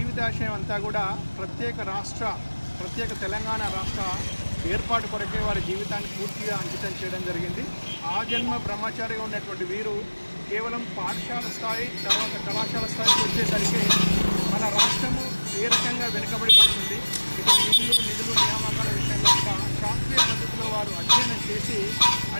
అంతా కూడా ప్రత్యేక తెలంగాణ రాష్ట్ర ఏర్పాటు కొరకే వారి జీవితాన్ని పూర్తిగా అంకితం చేయడం జరిగింది. ఆ జన్మ బ్రహ్మచారిగా ఉన్నటువంటి వీరు కేవలం పాఠశాల స్థాయి తర్వాత కళాశాల స్థాయికి వచ్చేసరికి మన రాష్ట్రము ఏ రకంగా వెనుకబడిపోతుంది, ఇటు నిధులు నియామకాల విషయంలో కూడా శాస్త్రీయ పద్ధతిలో వారు అధ్యయనం చేసి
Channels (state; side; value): inverted; both; correlation -1.00